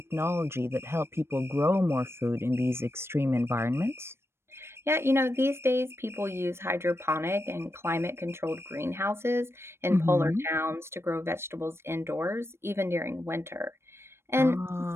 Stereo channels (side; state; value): left; late; 0.12 ms